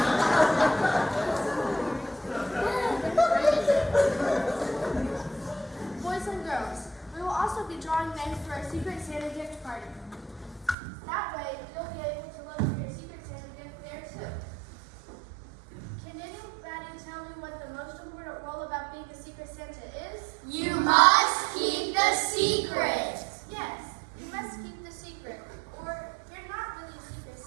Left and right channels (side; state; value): left; drops out; at 10.8 s